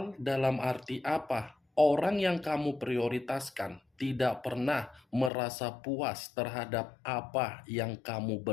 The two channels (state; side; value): drops out; right; at 5.3 s